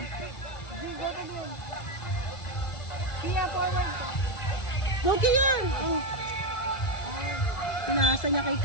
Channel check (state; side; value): late; right; 1.5 ms